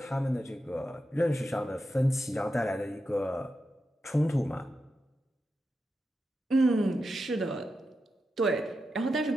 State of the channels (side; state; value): both; normal; correlation 0.88